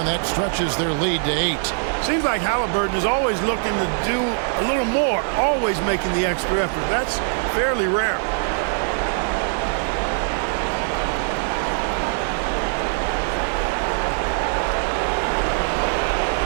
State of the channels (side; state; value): left; silent; 56 dB below the other